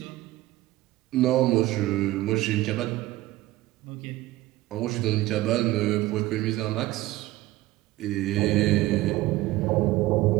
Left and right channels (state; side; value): quieter; left; 17.1 dB